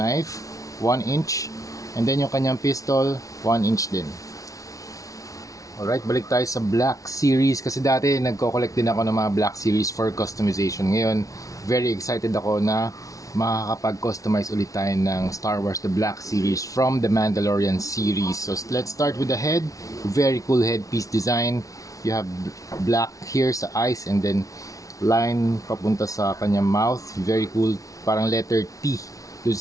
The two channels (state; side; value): late; right; 0.17 ms